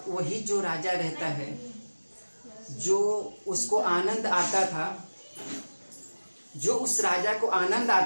वही जो राजा रहता है, जो उसको आनंद आता था, जो उस राजा को आनंद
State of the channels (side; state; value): both; inverted; correlation -1.00